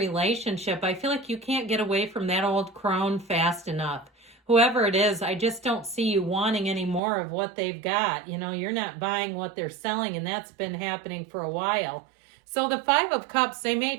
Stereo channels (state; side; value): drops out; left; at 7.0 s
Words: I feel like you can't get away from that old crone fast enough. Whoever it is, I just don't see you wanting any more of what they've got. You know, you're not buying what they're selling, and that's been happening for a while. So the 5 of Cups, they may